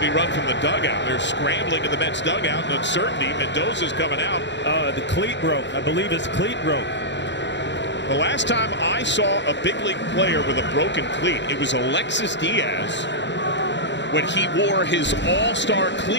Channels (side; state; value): right; late; 0.52 ms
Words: run from the dugout. They're scrambling in the Mets dugout in uncertainty. Mendoza's coming out. The cleat broke. I believe his cleat broke. The last time I saw a big league player with a broken cleat, it was Alexis Diaz when he wore his all-star